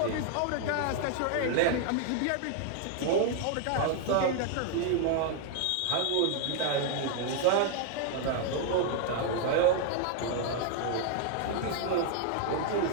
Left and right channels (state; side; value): different; both; correlation 0.00